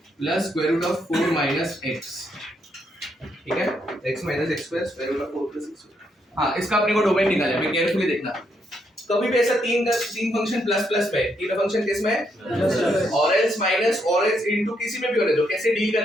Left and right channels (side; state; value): both; normal; correlation 0.77